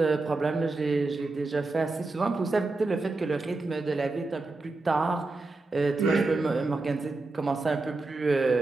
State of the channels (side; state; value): left; quieter; 3.3 dB